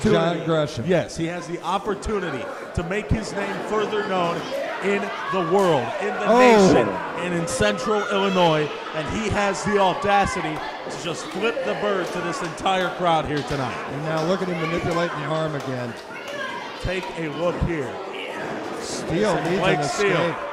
John Gresham. Yes, he has the opportunity to make his name further known in the world, in the nation, and in central Illinois, and he has the audacity to just flip the bird to this entire crowd here tonight. And now look at him manipulating the arm again. Take a look here. Steele needs an escape.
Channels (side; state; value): both; identical; correlation 1.00